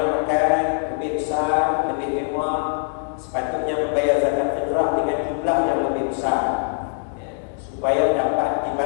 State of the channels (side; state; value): right; silent; digital silence